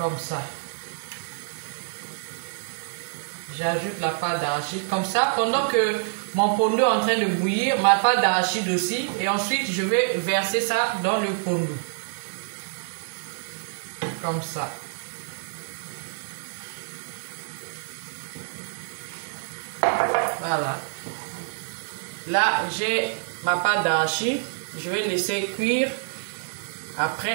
ça. J'ajoute la pâte d'arachide. Comme ça, pendant que mon pondo est en train de bouillir, ma pâte d'arachide aussi. Et ensuite, je vais verser ça dans le pondo. Comme ça. Voilà. Là, j'ai ma pâte d'arachide. Je vais laisser cuire.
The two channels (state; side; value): silent; left; digital silence